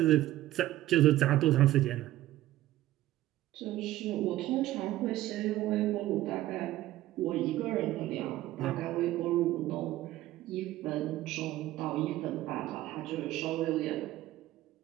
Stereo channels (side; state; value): left; quieter; 15.2 dB